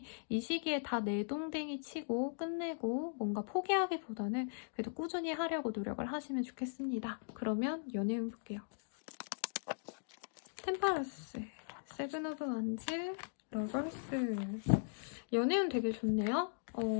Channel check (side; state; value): right; silent; digital silence